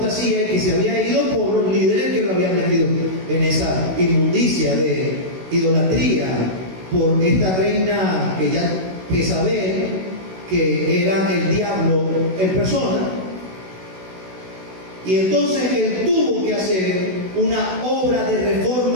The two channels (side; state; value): left; late; 16 ms